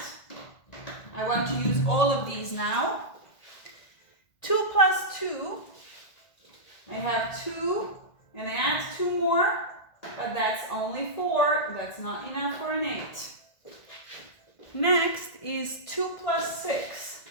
I want to use all of these now. 2 plus 2. I have 2, and I add 2 more, but that's only 4. That's not enough for an 8. Next is 2 plus 6.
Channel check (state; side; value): late; right; 1.8 ms